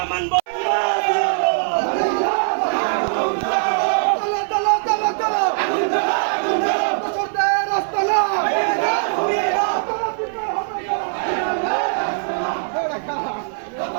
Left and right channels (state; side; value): silent; left; 58 dB below the other